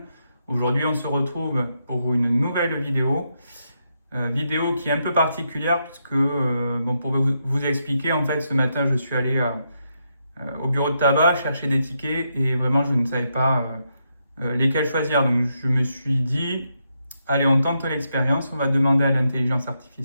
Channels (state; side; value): inverted; both; correlation -0.81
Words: Aujourd'hui on se retrouve pour une nouvelle vidéo. Vidéo qui est un peu particulière puisque, pour vous expliquer, en fait ce matin je suis allé au bureau de tabac chercher des tickets et vraiment je ne savais pas lesquels choisir. Donc je me suis dit, allez on tente l'expérience, on va demander à l'intelligence